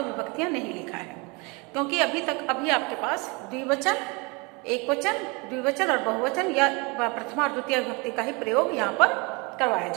नहीं लिखा है, क्योंकि अभी आपके पास द्विवचन, एकवचन, द्विवचन और बहुवचन या प्रथमा और द्वितीय विभक्ति का ही प्रयोग यहाँ पर करवाया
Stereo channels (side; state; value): left; quieter; 28.7 dB